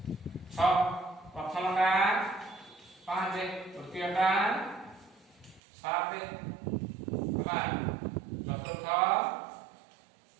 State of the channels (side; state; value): left; drops out; at 5.6 s